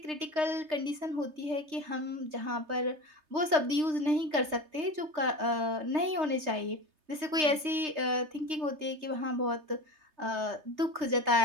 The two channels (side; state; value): left; late; 3.3 ms